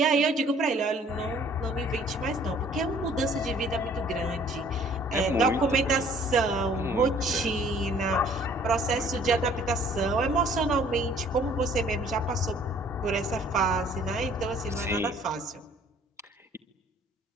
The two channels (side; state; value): both; normal; correlation 0.56